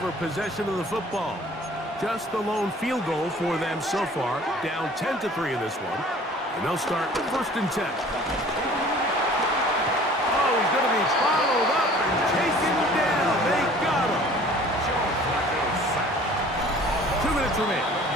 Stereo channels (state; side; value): normal; both; correlation 0.49